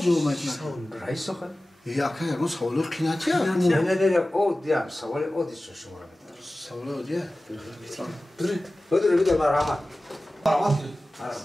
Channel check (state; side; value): normal; both; correlation 0.96